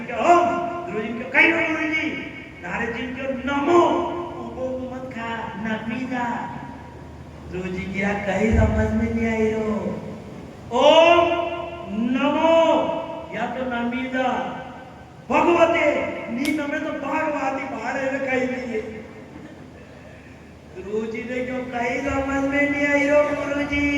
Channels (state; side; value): identical; both; correlation 1.00